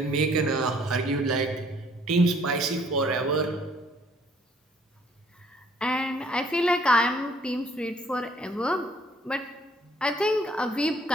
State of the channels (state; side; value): normal; both; correlation 0.61